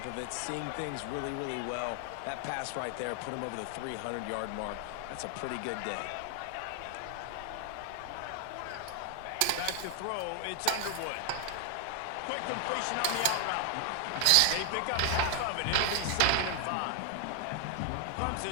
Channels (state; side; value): different; both; correlation 0.00